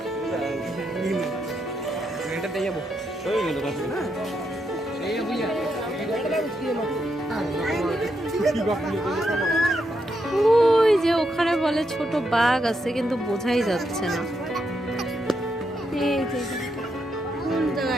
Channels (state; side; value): normal; both; correlation 0.81